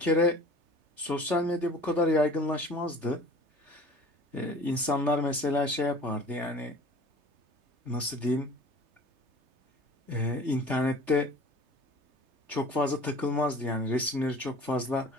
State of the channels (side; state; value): left; late; 3.3 ms